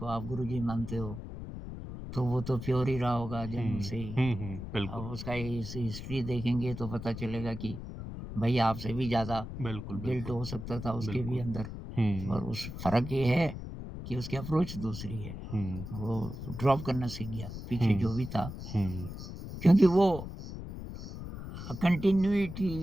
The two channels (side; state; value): left; noise; rumble, 9 dB below the sound